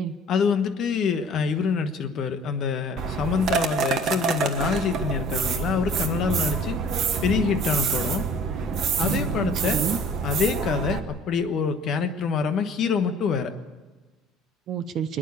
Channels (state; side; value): normal; both; correlation 0.50